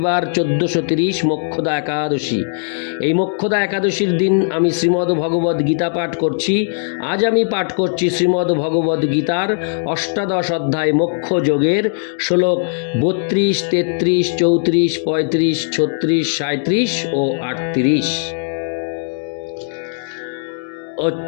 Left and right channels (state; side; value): silent; right; digital silence